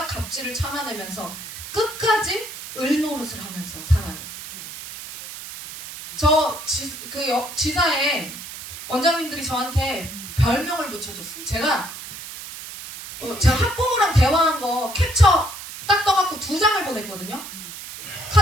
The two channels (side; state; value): right; noise; hiss, 11 dB below the sound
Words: 갑질을 참아내면서 끝까지 을노릇을 하면서 살아요. 지사에 원장님들이 저한테 별명을 붙여줬어요. 제가 학부모랑 대화한 거 캡처 딱 떠갖고 2장을 보냈거든요.